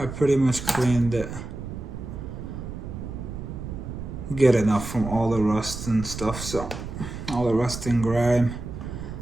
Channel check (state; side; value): noise; right; rumble, 8 dB below the sound